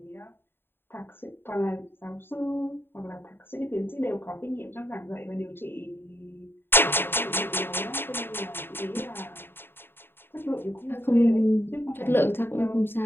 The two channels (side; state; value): right; late; 0.10 ms